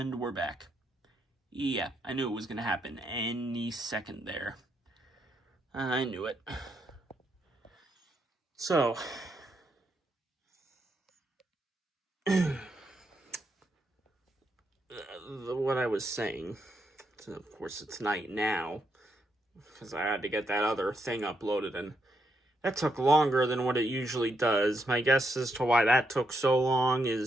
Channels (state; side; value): normal; both; correlation 0.79